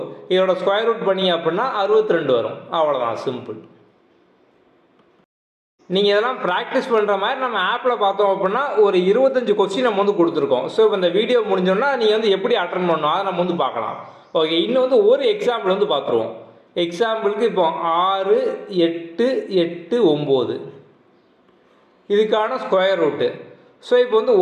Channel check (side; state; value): both; identical; correlation 1.00